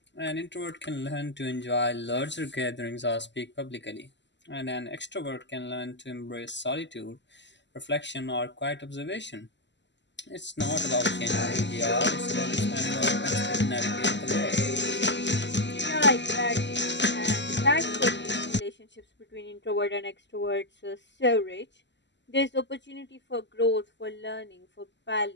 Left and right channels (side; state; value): right; late; 0.52 ms